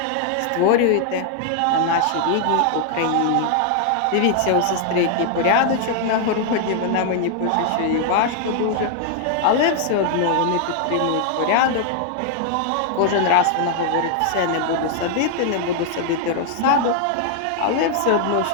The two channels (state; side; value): different; both; correlation 0.00